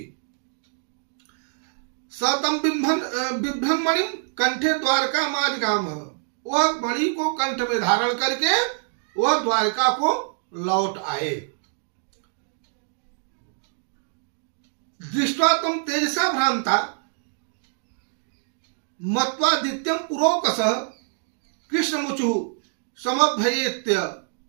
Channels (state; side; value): silent; left; digital silence